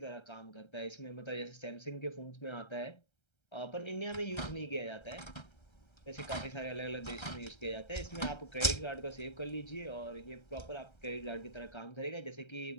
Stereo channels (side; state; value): right; late; 1.3 ms